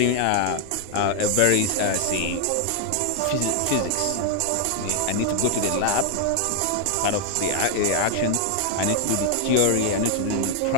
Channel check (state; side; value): different; both; correlation 0.00